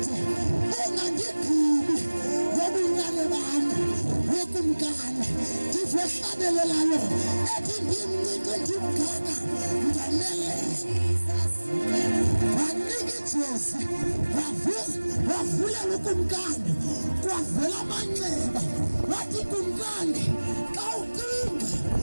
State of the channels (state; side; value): inverted; both; correlation -1.00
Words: ungangigqibi ngobuncane bami wekumkani, ndizohlabelelayo ethi ndimncinci ndimgaka ndaneleyo. Wanika ijezi wavulela ukumkani, kwavela amanxeba. Wathi kumkani, xa ucinga